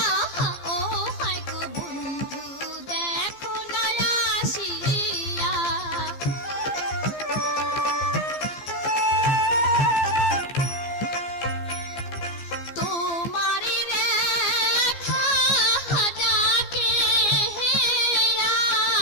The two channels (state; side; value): late; right; 15 ms